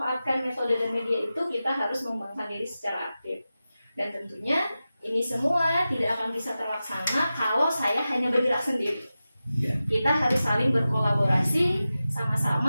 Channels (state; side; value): inverted; both; correlation -0.94